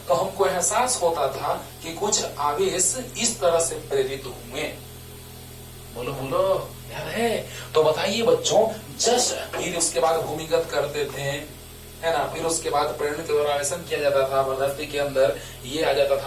तो हमको एहसास होता था कि कुछ आवेश इस तरह से प्रेरित हुए। बोलो बोलो, याद है? तो बताइए बच्चों, जस्ट फिर उसके बाद भूमिगत करते थे, है ना, फिर उसके बाद प्रेरण के द्वारा आवेशन किया जाता था पदार्थ के अंदर, ये आ जाता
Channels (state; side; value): identical; both; correlation 1.00